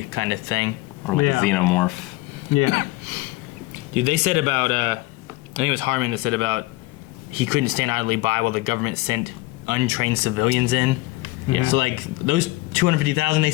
kind of thing. or like Yeah. a xenomorph? Yeah. Dude, they said about, I think it was Harmon that said about he couldn't stand idly by while the government sent untrained civilians in. Yeah. So like those 250,000 they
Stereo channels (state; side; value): quieter; right; 20.8 dB